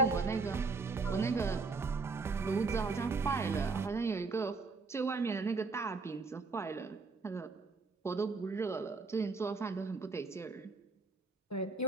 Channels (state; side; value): quieter; left; 4.1 dB